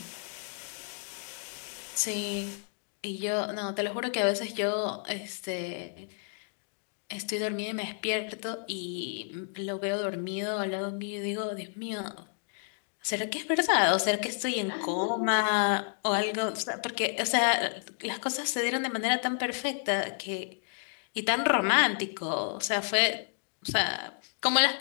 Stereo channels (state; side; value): silent; right; 57 dB below the other